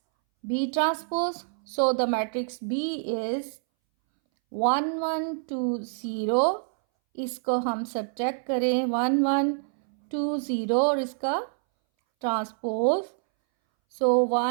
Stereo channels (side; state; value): left; silent; 60 dB below the other